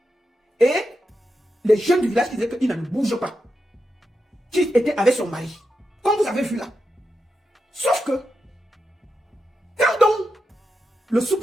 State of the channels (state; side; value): normal; both; correlation 0.87